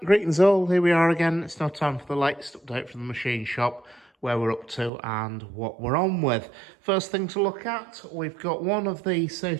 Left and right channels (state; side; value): drops out; left; at 4.9 s